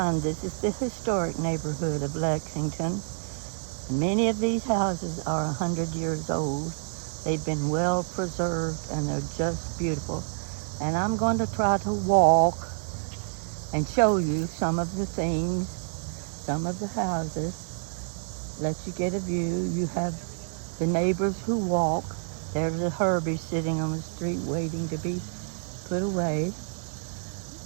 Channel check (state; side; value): silent; left; digital silence